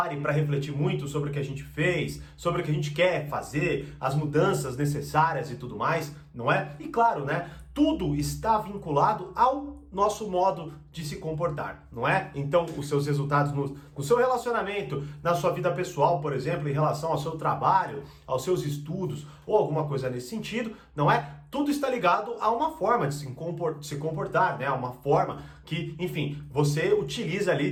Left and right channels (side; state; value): both; identical; correlation 1.00